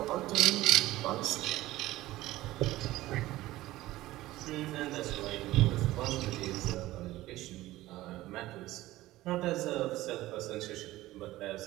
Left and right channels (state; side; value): quieter; left; 16.8 dB